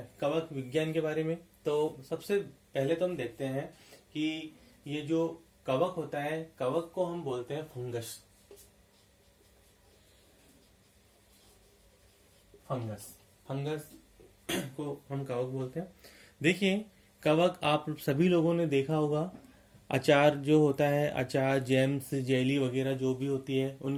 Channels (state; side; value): identical; both; correlation 1.00